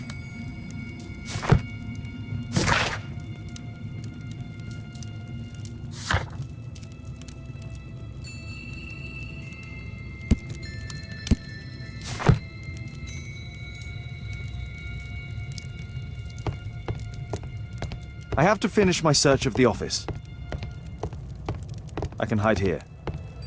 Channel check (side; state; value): both; identical; correlation 1.00